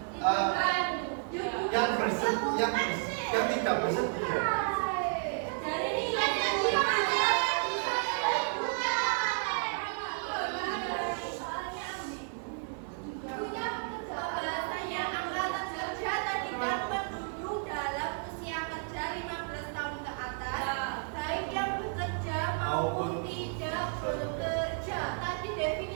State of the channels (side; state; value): left; silent; 56 dB below the other